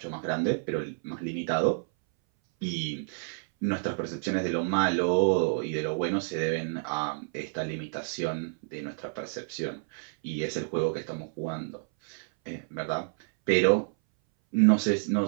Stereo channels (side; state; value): left; silent; 58 dB below the other